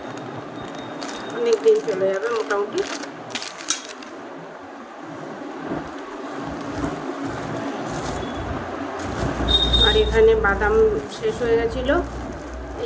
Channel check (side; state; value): both; identical; correlation 1.00